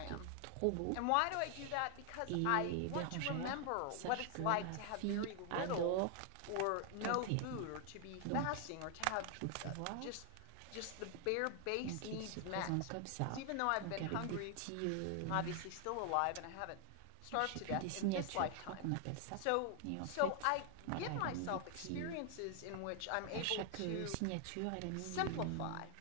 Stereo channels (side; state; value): both; different; correlation 0.00